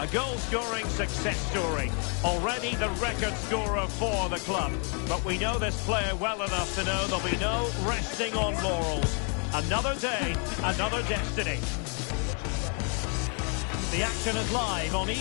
A goal-scoring success story. Already the record scorer for the club. But we know this player well enough to know there'll be no resting on laurels. Another day, another destiny. The action is live on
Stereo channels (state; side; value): quieter; right; 39.4 dB